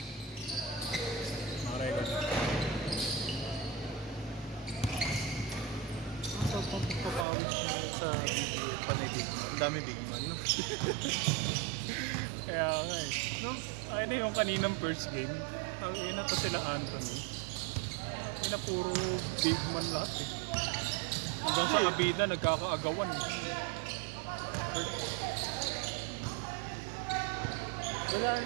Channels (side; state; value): left; drops out; at 7.2 s